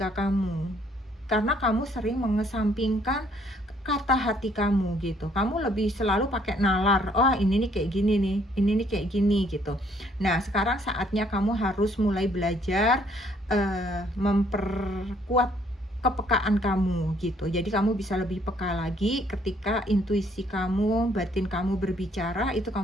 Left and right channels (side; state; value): both; normal; correlation 0.65